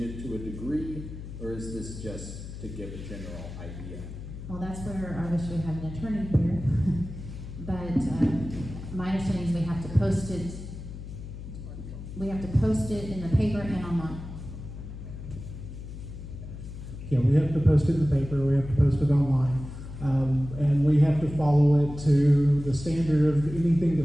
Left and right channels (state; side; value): noise; left; hum, 11 dB below the sound